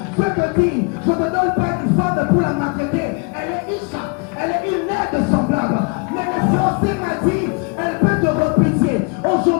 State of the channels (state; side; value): quieter; right; 30.8 dB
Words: Dieu te dit, je ne te donne pas une femme pour la maltraiter. Elle est Isha, elle est une aide semblable. Mais le français m'a dit, elle peut te refuser.